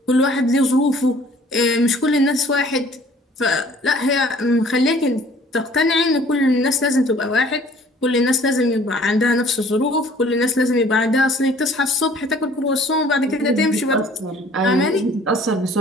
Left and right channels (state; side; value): normal; both; correlation 0.54